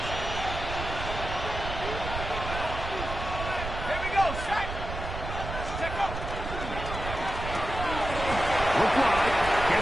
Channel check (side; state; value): right; noise; rumble, 6 dB below the sound